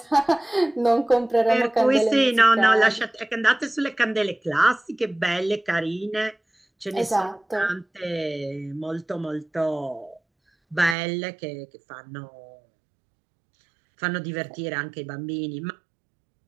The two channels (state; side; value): drops out; left; at 11.0 s